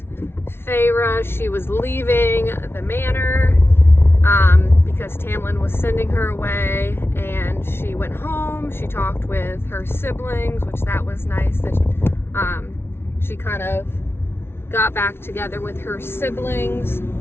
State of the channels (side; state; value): right; late; 0.12 ms